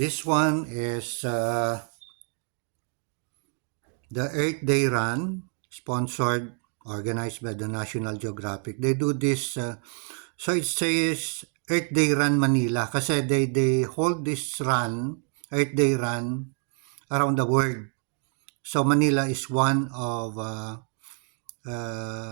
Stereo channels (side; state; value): left; quieter; 39.2 dB